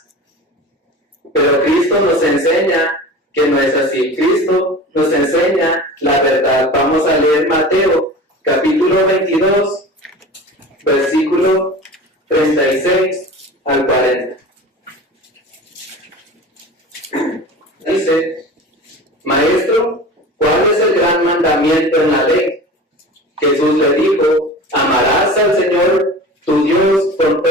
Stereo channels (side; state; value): both; normal; correlation 0.36